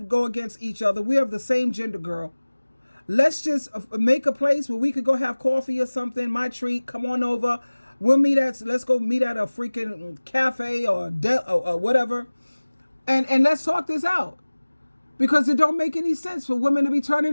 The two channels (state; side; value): inverted; both; correlation -1.00